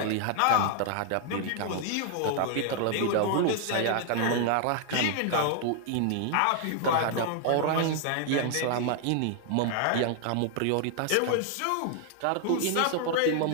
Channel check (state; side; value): different; both; correlation 0.00